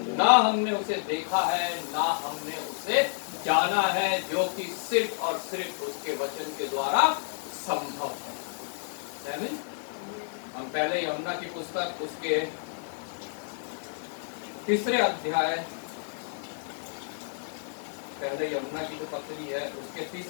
ना हमने उसे देखा है ना हमने उसे जाना है, जो कि सिर्फ और सिर्फ उसके वचन के द्वारा संभव है। हम पहले यमुना की पुस्तक उसके 3 अध्याय, पहले यमुना की जो पत्री है उसके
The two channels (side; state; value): right; silent; digital silence